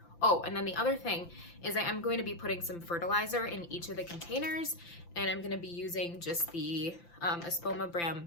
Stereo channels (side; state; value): right; late; 5.9 ms